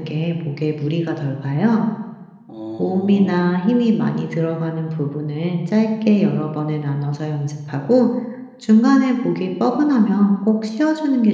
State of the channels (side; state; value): both; identical; correlation 1.00